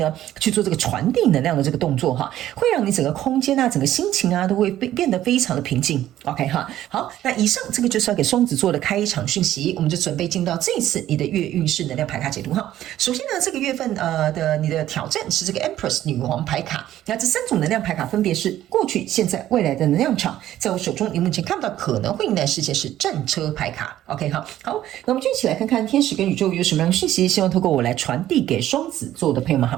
去做這個傳遞能量的這個動作哈，會讓你整個空間啊，整個心情啊都會變得非常的平靜 ，OK 哈。好，那以上這個就是要給雙子座的開場訊息，我們就準備進到這一次你的月運勢能量牌卡解讀哈。首先呢，這個月份的你的挑戰是這個 Empress 女王牌卡，那這3種能量牌卡分別是過去、現在、未來的能量場。在我手中，你目前看不到可能會迎來事件是戰車牌卡。OK 好，那我們就一起來看看天使跟宇宙有什麼樣的訊息，希望透過我來傳遞給雙子座的朋友們，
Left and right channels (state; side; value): quieter; left; 12.9 dB